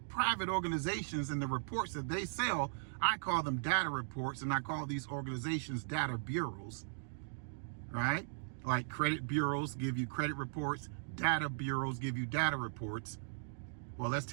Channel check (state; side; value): silent; left; digital silence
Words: private organizations and the reports that they sell, I call them data reports, and I call these organizations data bureaus, right? Like credit bureaus give you credit reports, data bureaus give you data reports. Well, let's